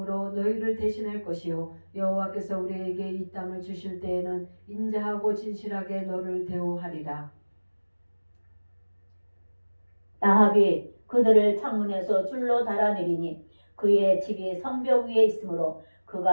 너희를 대신할 것이요 여호와께서 우리에게 이 땅을 주실 때에는 인자하고 진실하게 너를 대우하리라. 라합이 그들을 창문에서 줄로 달아내리니 그의 집이 성벽 위에 있으므로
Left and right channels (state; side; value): inverted; both; correlation -1.00